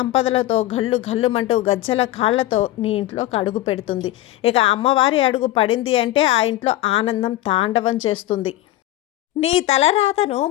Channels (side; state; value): right; quieter; 15.4 dB